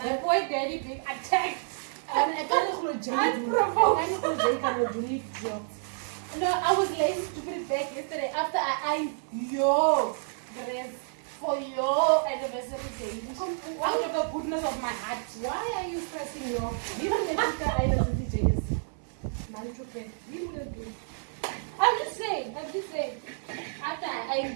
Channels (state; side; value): silent; left; digital silence